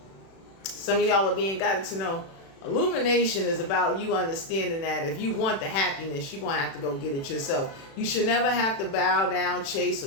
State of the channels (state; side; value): late; right; 36 ms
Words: Some of y'all are being guided to know illumination is about you understanding that if you want the happiness, you're going to have to go get it yourself. You should never have to bow down, chase,